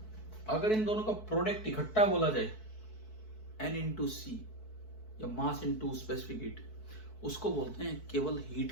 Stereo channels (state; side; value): late; right; 4.6 ms